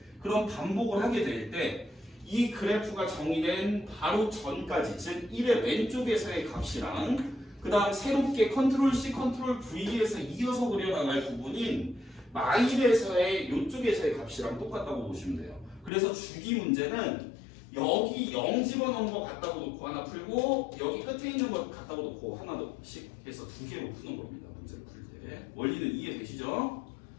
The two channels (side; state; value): right; drops out; at 15.9 s